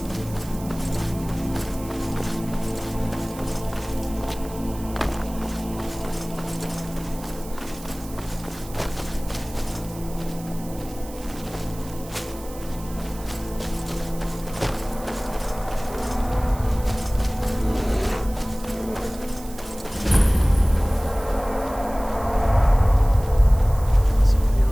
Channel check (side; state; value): right; noise; hiss, 18 dB below the sound